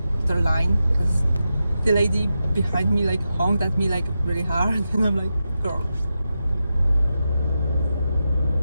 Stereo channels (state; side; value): inverted; both; correlation -0.89